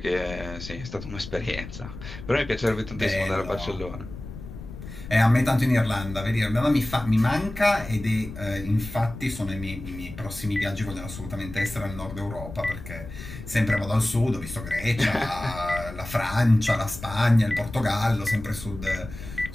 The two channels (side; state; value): left; noise; rumble, 12 dB below the sound